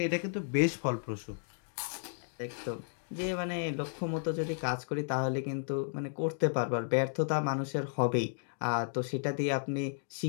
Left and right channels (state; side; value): silent; right; digital silence